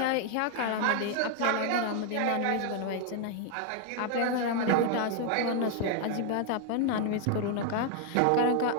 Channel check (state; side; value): different; both; correlation 0.00